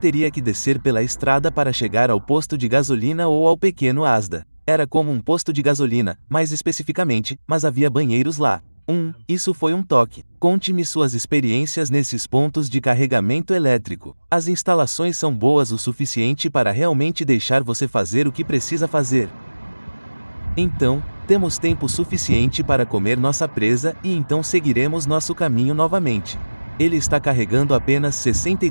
que descer pela estrada para chegar ao posto de gasolina ou ao pequeno Asda. Era como um posto de gasolina, mais especificamente, mas havia banheiros lá. Isso foi um toque. Conte-me suas experiências nesses pontos de carregamento elétrico. As instalações são boas o suficiente para realmente deixar você fazer o que precisa fazer. Então, temos tempo suficiente para comer nossa presa e então seguiremos nosso caminho novamente. Ele está carregando apenas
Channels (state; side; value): inverted; both; correlation -1.00